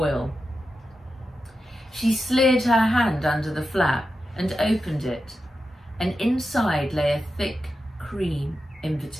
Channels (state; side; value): normal; both; correlation 0.90